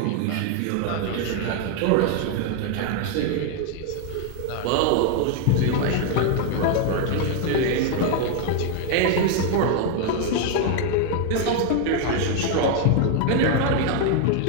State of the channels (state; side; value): different; both; correlation 0.00